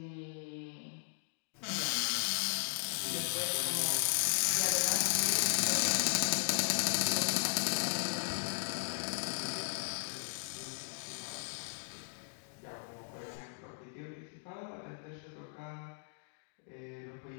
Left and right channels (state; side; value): silent; right; digital silence